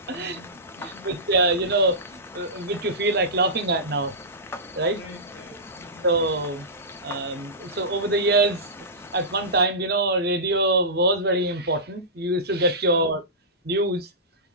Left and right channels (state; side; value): normal; both; correlation -0.19